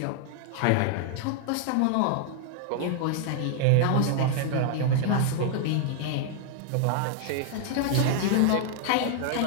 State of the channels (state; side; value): different; both; correlation 0.00